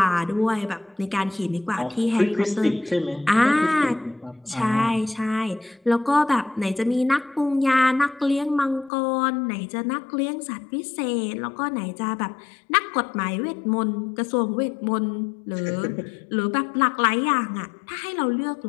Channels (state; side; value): drops out; right; at 8.9 s